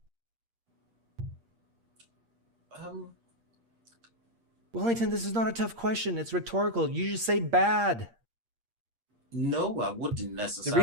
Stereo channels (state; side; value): late; left; 8.6 ms